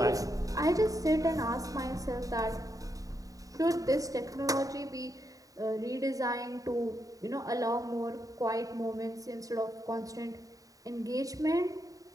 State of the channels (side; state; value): left; late; 0.17 ms